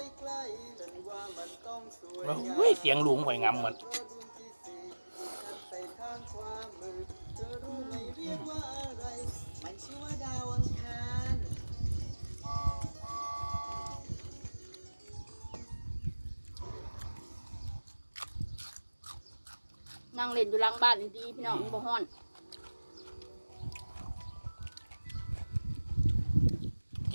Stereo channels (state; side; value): inverted; both; correlation -1.00